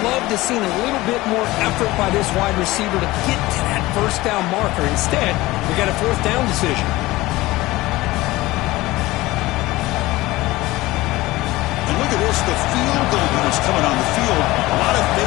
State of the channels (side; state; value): right; quieter; 19.0 dB